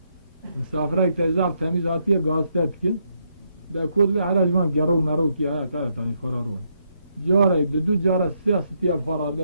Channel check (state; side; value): inverted; both; correlation -0.77